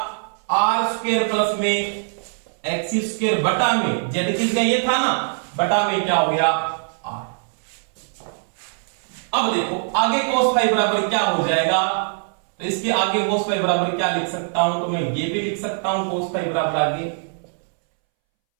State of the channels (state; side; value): silent; left; 63 dB below the other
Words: आर स्क्वायर प्लस में एक्सी स्क्वायर बटा में जेड किसका ये था ना, बटा में क्या हो गया? आर। अब देखो आगे cos फाई बराबर क्या हो जाएगा, तो इसके आगे cos फाई बराबर क्या लिख सकता हूं, तो मैं ये भी लिख सकता हूं cos फाई बराबर आगे